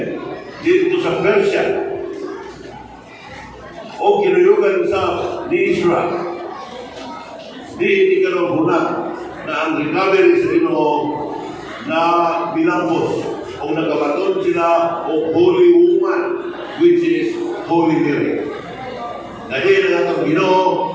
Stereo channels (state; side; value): identical; both; correlation 1.00